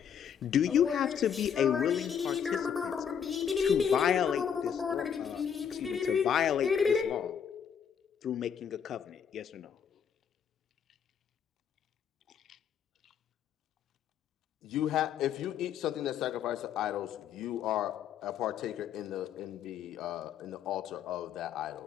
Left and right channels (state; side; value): quieter; right; 7.9 dB